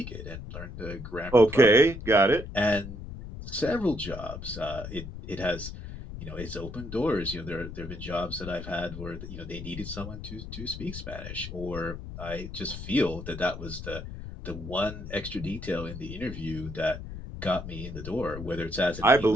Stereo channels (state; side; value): noise; left; rumble, 10 dB below the sound